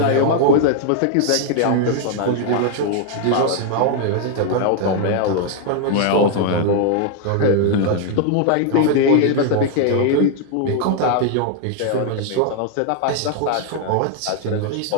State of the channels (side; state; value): both; different; correlation 0.00